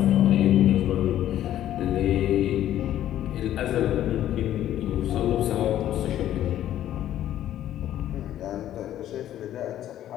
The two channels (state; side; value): quieter; right; 12.1 dB